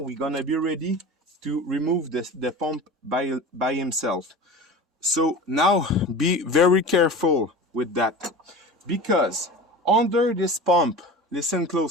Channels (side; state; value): both; normal; correlation 0.34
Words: gonna be ready to remove the pump by himself. So now be very careful with that, because under this pump, listen